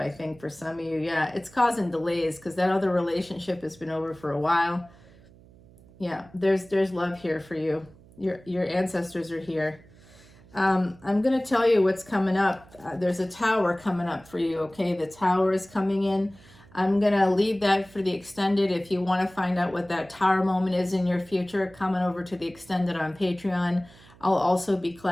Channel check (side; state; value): right; noise; hum, 24 dB below the sound